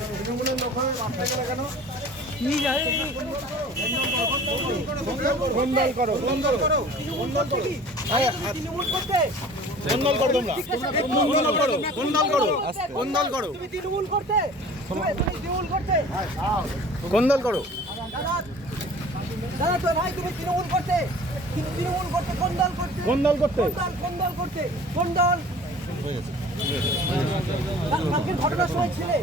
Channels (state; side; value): normal; both; correlation 0.45